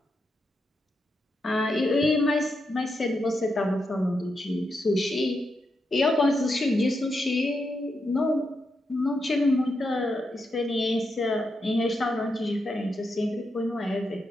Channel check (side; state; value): both; normal; correlation 0.84